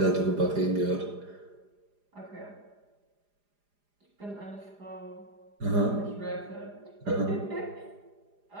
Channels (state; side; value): late; left; 4.9 ms